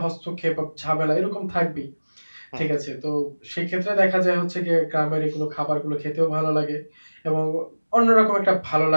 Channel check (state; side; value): inverted; both; correlation -1.00